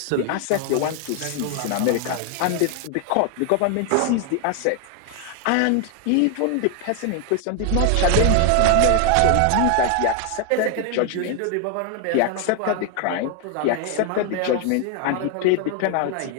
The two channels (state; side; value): different; both; correlation 0.00